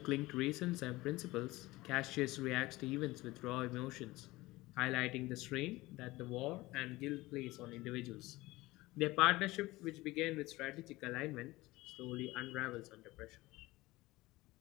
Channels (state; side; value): quieter; right; 19.7 dB